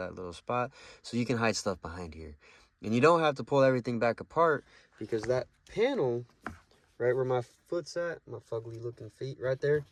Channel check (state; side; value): identical; both; correlation 1.00